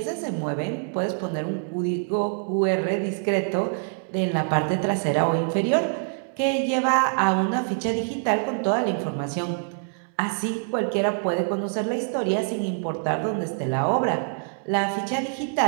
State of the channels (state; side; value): silent; left; 56 dB below the other